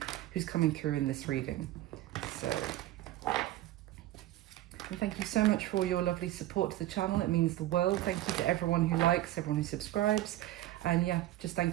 who's coming through in this reading. So, and thank you so much for all your lovely support to the channel. It means the world. Thank you to everyone who likes, everyone who subscribes. And yeah, just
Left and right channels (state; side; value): quieter; left; 15.0 dB